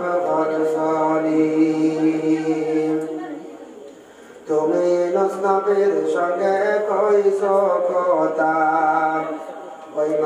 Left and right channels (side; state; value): both; identical; correlation 1.00